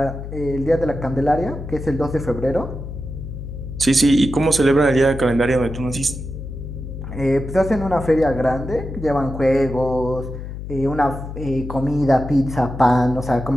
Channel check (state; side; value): noise; left; hum, 9 dB below the sound